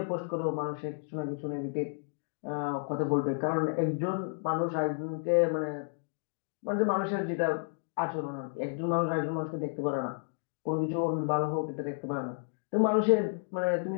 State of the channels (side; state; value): right; silent; digital silence